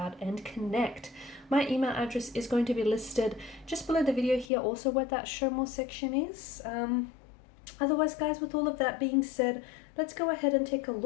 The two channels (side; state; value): right; drops out; at 4.5 s